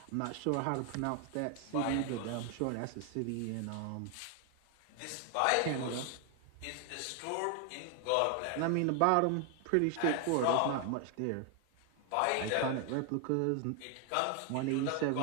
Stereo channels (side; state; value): both; different; correlation 0.00